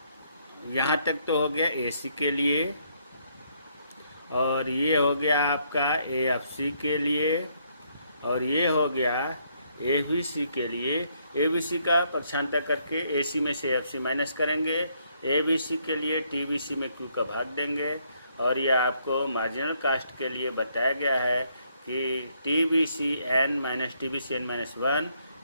यहाँ तक तो हो गया एसी के लिए, और ये हो गया आपका एएफसी के लिए, और ये हो गया एबीसी के लिए। एबीसी का पक्षांतर करके एसी में से एएफसी माइनस करेंगे, एबीसी के लिए टीबीसी में क्यू का भाग देंगे। और ये आपको मार्जिनल कास्ट के लिए बताया गया है कि TBC N minus TBC N minus 1,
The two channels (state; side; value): inverted; both; correlation -0.71